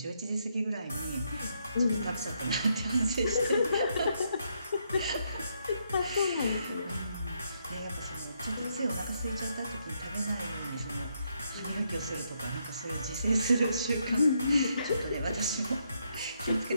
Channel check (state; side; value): inverted; both; correlation -0.76